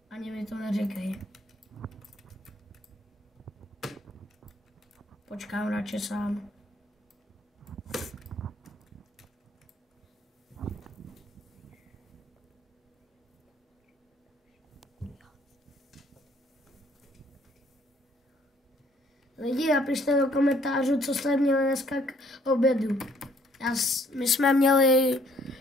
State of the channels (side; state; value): both; normal; correlation 0.64